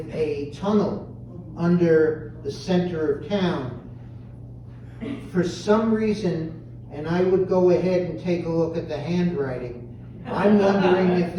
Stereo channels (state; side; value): identical; both; correlation 1.00